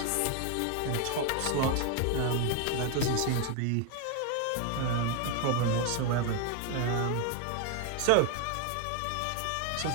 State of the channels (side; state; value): both; different; correlation 0.01